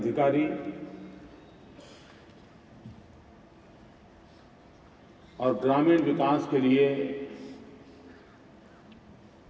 और ग्रामीण विकास के लिए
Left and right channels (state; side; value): identical; both; correlation 1.00